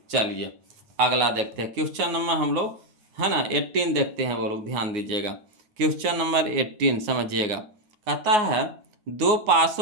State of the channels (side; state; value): left; late; 9.6 ms